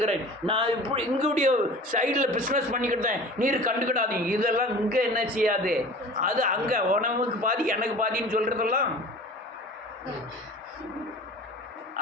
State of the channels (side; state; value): both; normal; correlation 0.40